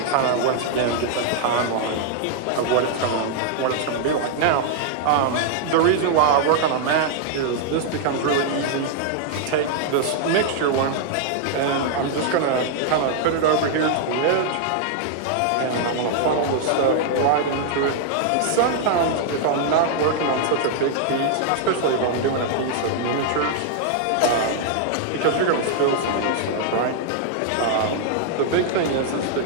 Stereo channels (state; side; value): different; both; correlation 0.00